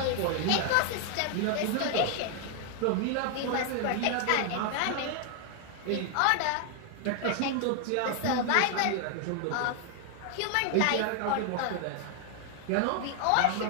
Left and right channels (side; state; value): both; different; correlation 0.00